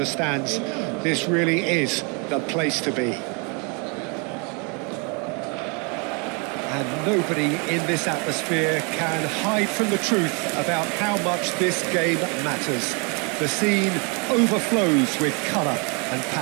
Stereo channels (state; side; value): quieter; left; 33.3 dB